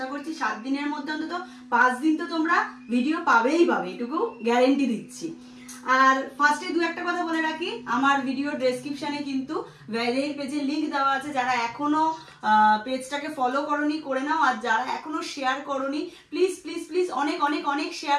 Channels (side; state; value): both; identical; correlation 1.00